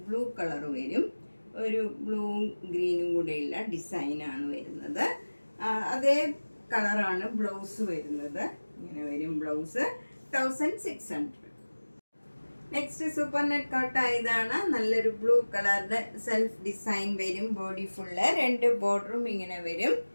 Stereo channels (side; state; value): both; inverted; correlation -1.00